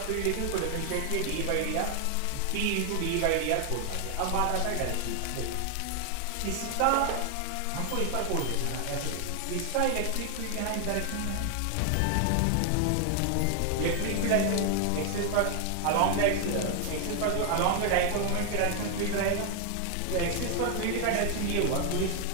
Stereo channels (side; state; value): both; different; correlation 0.00